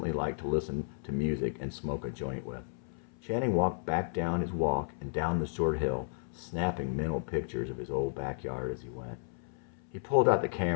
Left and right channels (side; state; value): right; silent; 56 dB below the other